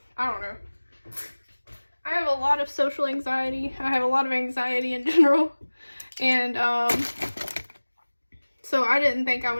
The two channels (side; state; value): both; inverted; correlation -1.00